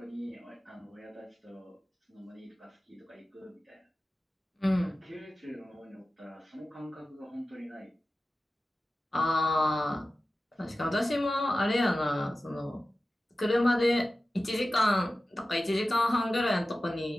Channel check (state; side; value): normal; both; correlation 0.95